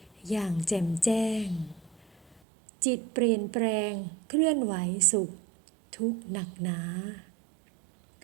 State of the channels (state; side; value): drops out; left; at 2.4 s